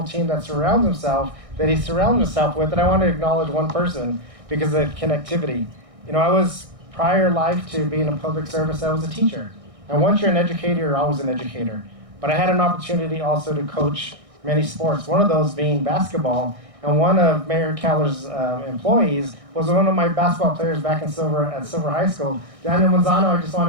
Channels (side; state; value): left; late; 1.6 ms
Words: team that surrounds himself, that he surrounds himself with, and I want to acknowledge one person because of connectivity. You know, I was, prior life to being in public service, I was a teacher. And once you're an educator, you're always an educator. But I had an opportunity also to coach many sports, one of those being basketball. And one of Mayor Keller's employees was one of my basketball players back at Silver High School. Daniel Manzano, I just